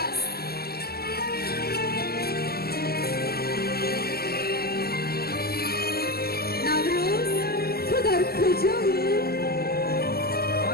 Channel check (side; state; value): right; late; 0.45 ms